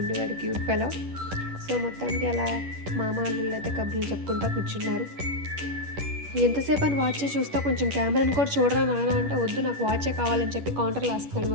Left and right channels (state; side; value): late; left; 10 ms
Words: క్యూట్ ఫెలో. సో మొత్తానికి అలా మామ అల్లుళ్ళు అయితే కబుర్లు చెప్పుకుంటూ కూర్చున్నారు. ఎంతసేపు అని వాచే చూస్తా, కొంచెం కెమెరాని కూడా చూడరా నాయన అంటే, వద్దు నాకు వాచే కావాలని చెప్పి కౌంటర్లో వేస్తున్నాడు